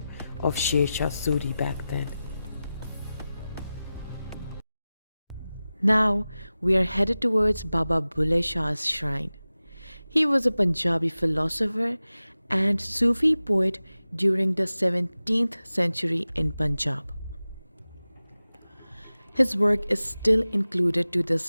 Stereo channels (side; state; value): both; inverted; correlation -0.95